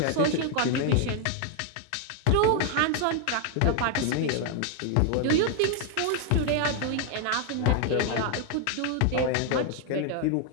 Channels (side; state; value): both; different; correlation 0.01